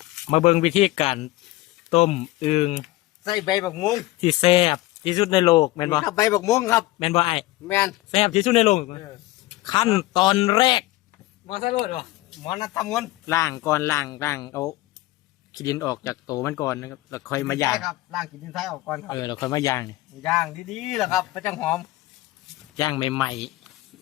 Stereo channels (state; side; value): quieter; right; 18.1 dB